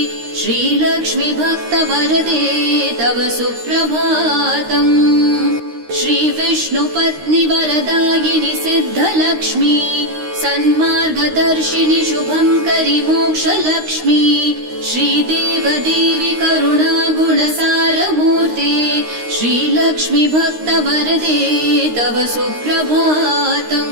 श्रीलक्ष्मी भक्तवरदे तव सुप्रभातम् श्रीविष्णुपत्नि वरदायिनि सिद्धलक्ष्मी सन्मार्गदर्शिनि शुभङ्करि मोक्षलक्ष्मी श्रीदेवदेवी करुणागुणसारमूर्ते श्रीलक्ष्मी भक्तवरदे तव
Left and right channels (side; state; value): left; late; 13 ms